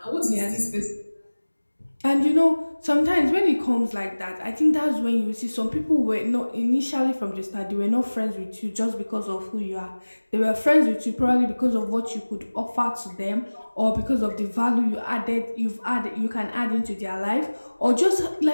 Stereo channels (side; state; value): both; inverted; correlation -1.00